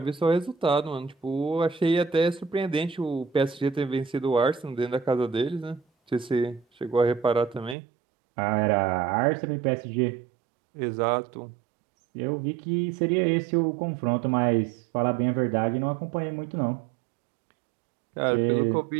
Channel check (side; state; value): left; drops out; at 7.8 s